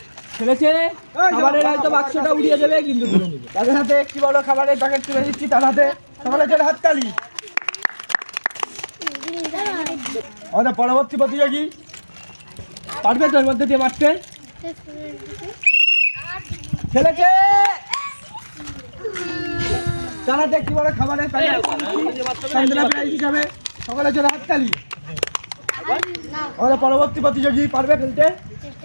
খেলেছে। খাবারের হয়তো বাক্সটা উড়িয়ে দেবে, কিন্তু তাদের হাতে একটি বড় খাবারের প্যাকেট তুলে দিচ্ছি তার হাতে। সকলে জোরে হাততালি। আমাদের পরবর্তী প্রতিযোগী পারবে তো এর মধ্যে দিয়ে মারতে? খেলেছে। তারা দেখতে বড় খাবারের প্যাকেট সান্ত্বনা প্রাইজ হিসাবে। সকলে জোরে হাততালি। আমাদের পরবর্তী প্রতিযোগী পারবে ফেলতে?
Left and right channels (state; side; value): inverted; both; correlation -1.00